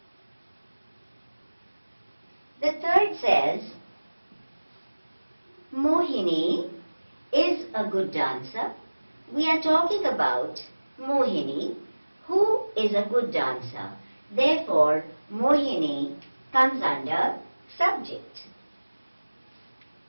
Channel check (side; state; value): both; inverted; correlation -1.00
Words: The third says, Mohini is a good dancer. We are talking about Mohini, who is a good dancer. Therefore, Mohini comes under subject.